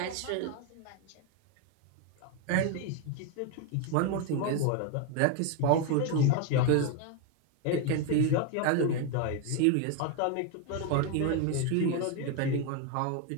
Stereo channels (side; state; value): both; different; correlation 0.01